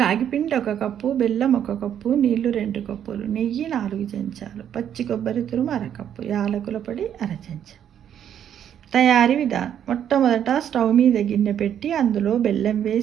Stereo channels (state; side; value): quieter; left; 9.6 dB